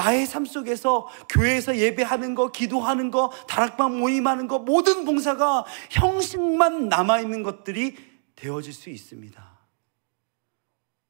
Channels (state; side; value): silent; left; digital silence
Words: 삶 속에서 교회에서 예배하는 거, 기도하는 거, 다락방 모임하는 거, 모든 봉사가 형식만 남아있는 것들이 되어질 수 있습니다.